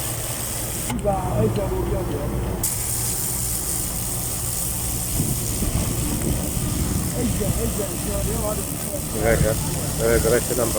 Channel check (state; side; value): identical; both; correlation 1.00